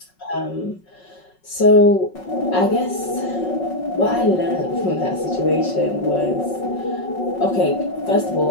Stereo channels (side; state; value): right; late; 5.4 ms